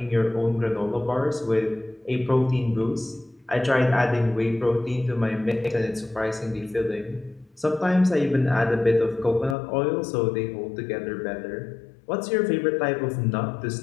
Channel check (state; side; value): drops out; right; at 9.6 s